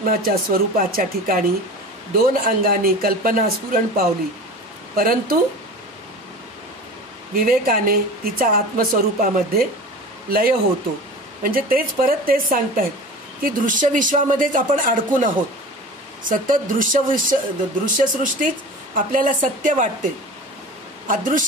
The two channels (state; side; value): normal; both; correlation 0.35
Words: स्वरूपाच्या ठिकाणी दोन अंगांनी कल्पना स्फुरण पावली, परंतु विवेकाने तिचा आत्मस्वरूपामध्ये लय होतो. म्हणजे तेच परत तेच सांगतायत की दृश्य विश्वामध्येच आपण अडकून आहोत. सतत दृश्य सृष्टीच आपल्याला सत्य वाटते.